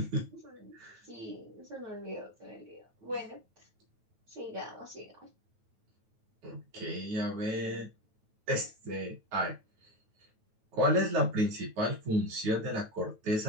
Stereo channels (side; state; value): left; late; 9.2 ms